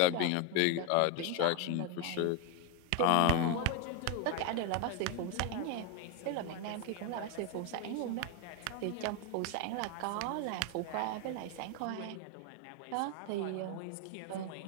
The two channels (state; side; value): different; both; correlation 0.02